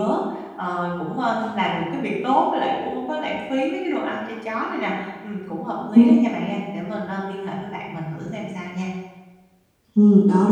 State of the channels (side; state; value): both; identical; correlation 1.00